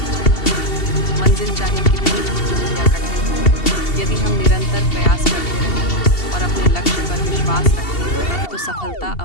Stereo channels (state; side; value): late; right; 2.7 ms